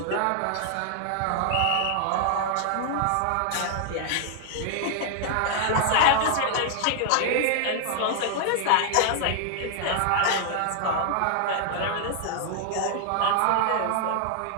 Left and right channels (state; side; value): different; both; correlation 0.00